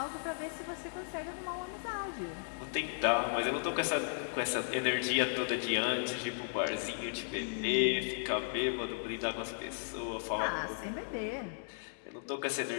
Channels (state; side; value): silent; right; 54 dB below the other